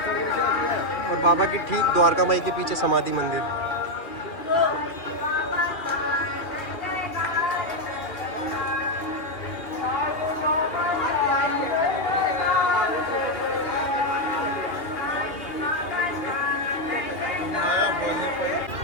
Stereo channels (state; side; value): late; right; 2.4 ms